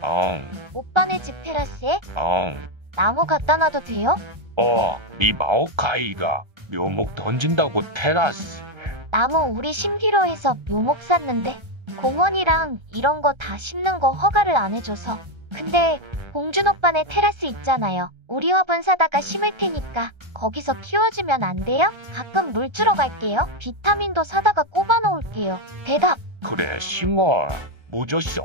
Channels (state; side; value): late; left; 1.3 ms